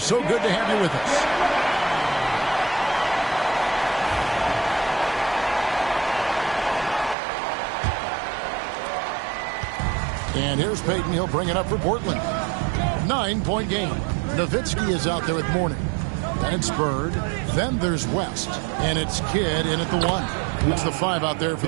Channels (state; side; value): drops out; left; at 7.2 s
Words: So good to have you with us. And here's Payton. He'll bring it up for Portland. 9-point game. Nowitzki is out there with Mourning. Then it's Bird. Then there's West. And it's Kidd in at the 1. It's the 5 out there for